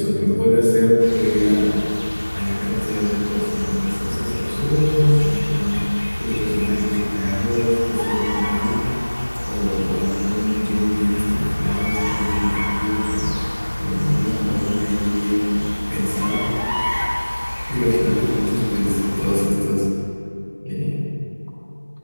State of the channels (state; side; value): inverted; both; correlation -1.00